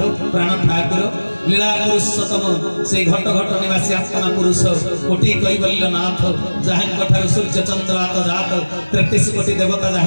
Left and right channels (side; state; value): both; inverted; correlation -1.00